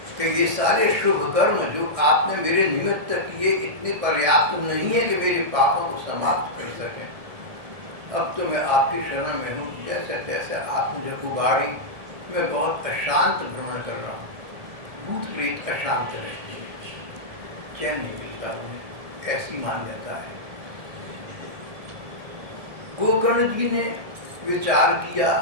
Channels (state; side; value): late; left; 1.6 ms